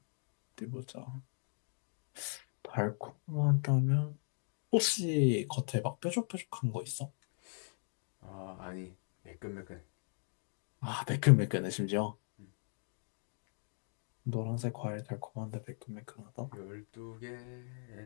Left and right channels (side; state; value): right; silent; 52 dB below the other